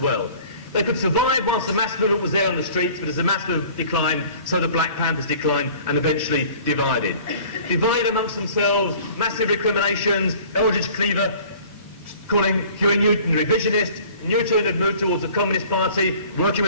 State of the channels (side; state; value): both; inverted; correlation -0.49